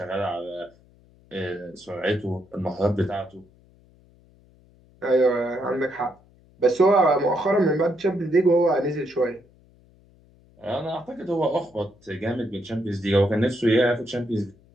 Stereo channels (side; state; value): left; noise; hum, 29 dB below the sound